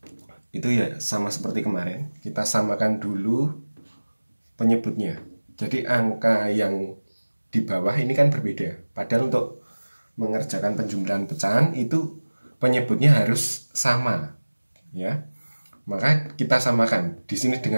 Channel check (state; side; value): inverted; both; correlation -1.00